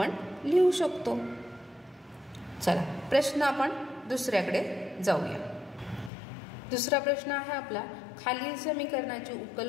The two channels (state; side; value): drops out; right; at 6.1 s